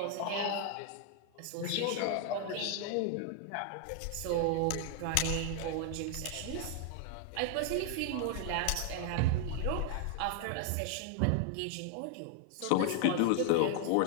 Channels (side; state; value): both; different; correlation 0.00